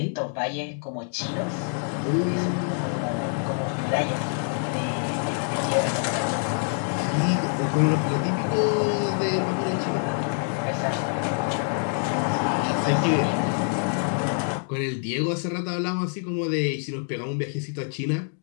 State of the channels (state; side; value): silent; right; 61 dB below the other